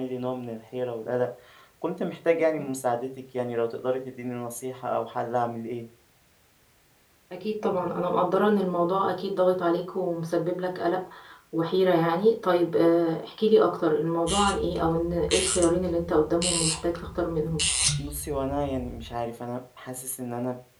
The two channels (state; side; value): identical; both; correlation 1.00